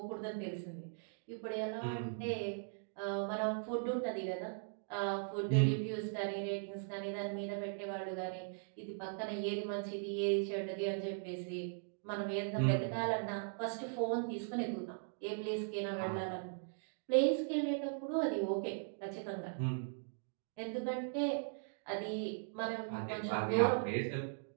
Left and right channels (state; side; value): silent; left; digital silence